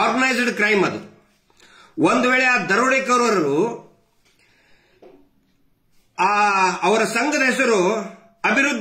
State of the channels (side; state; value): both; identical; correlation 1.00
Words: ಕ್ರೈಮ್ ಅದು. ಒಂದು ವೇಳೆ ಆ ದರೋಡೆಕೋರರು ಅವರ ಸಂಘದ ಹೆಸರು